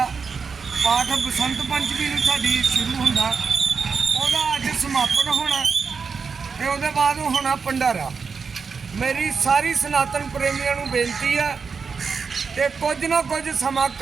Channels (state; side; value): quieter; left; 5.4 dB